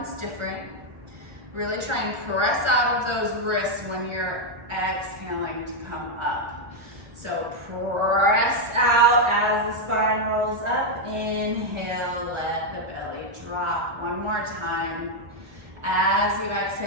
different. Really try and press out of those wrists when you're exhaling to come up. So press out as the spine rolls up. Inhale, let the belly drop. One more time. As you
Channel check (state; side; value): late; left; 1.4 ms